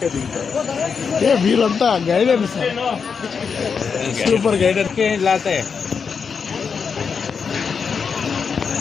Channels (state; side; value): quieter; right; 6.0 dB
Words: మీరంతా గైడెన్స్ సూపర్ గైడెన్స్ లాతే